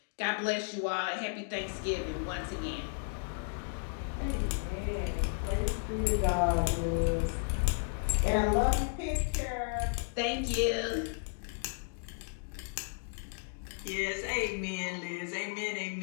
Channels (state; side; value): silent; right; digital silence